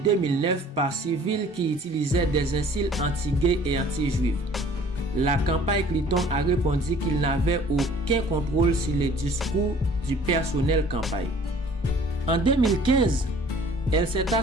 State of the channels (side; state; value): both; normal; correlation 0.52